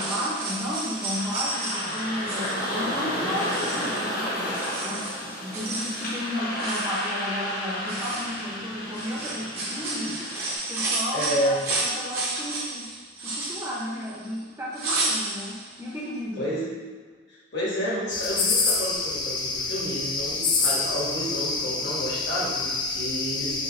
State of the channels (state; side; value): normal; both; correlation 0.20